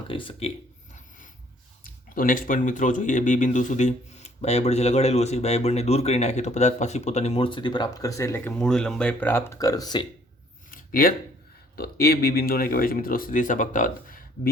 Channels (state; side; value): normal; both; correlation 0.61